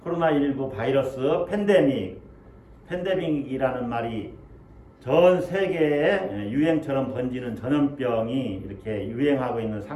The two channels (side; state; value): both; identical; correlation 1.00